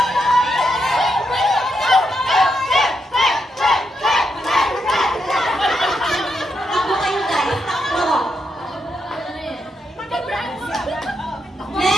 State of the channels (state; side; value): normal; both; correlation 0.81